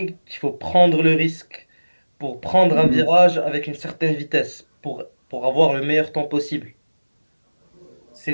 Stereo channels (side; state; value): both; inverted; correlation -1.00